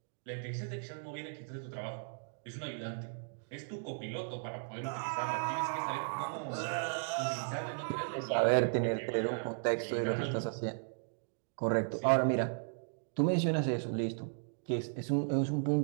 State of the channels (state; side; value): silent; left; digital silence